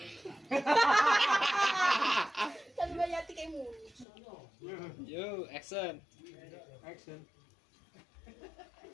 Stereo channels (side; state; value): right; drops out; at 4.0 s